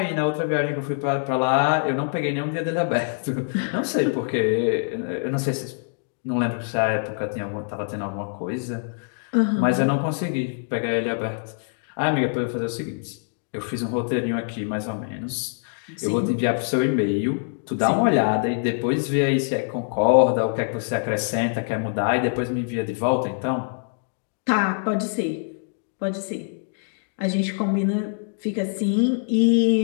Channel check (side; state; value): right; silent; digital silence